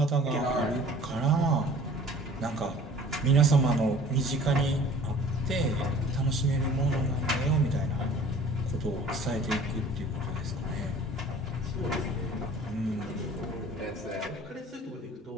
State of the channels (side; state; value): both; normal; correlation 0.48